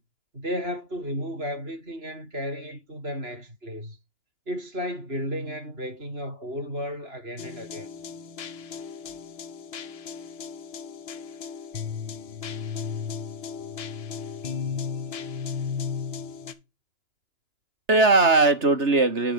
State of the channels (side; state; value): left; late; 3.3 ms